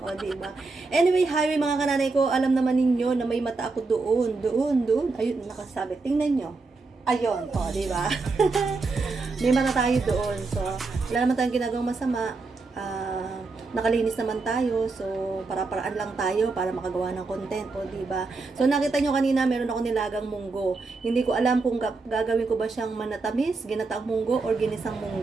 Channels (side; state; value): left; quieter; 3.9 dB